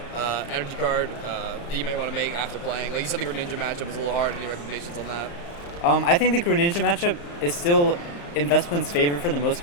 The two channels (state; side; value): late; right; 35 ms